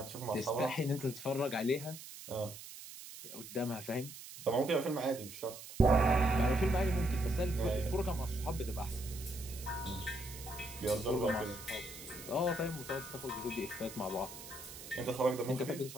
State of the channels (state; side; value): noise; right; hiss, 13 dB below the sound